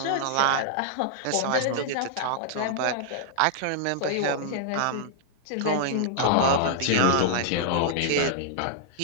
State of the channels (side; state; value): both; different; correlation -0.01